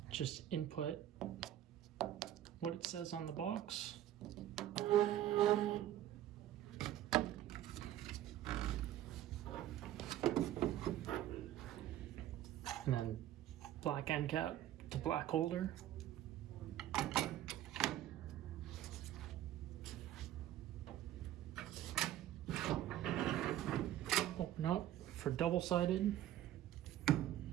Just input what it says on the box. And then black end cap to black holder. Open up for double-sided.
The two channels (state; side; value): quieter; left; 12.6 dB